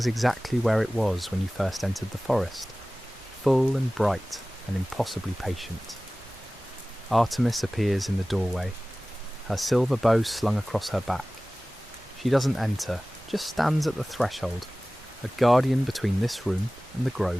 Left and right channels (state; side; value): normal; both; correlation 0.98